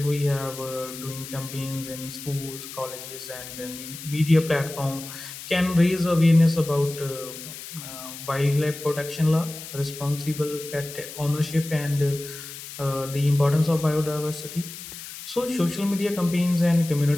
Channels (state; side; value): noise; left; hiss, 12 dB below the sound